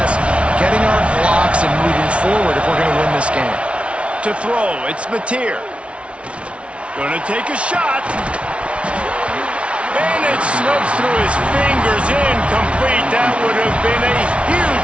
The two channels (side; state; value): left; late; 0.061 ms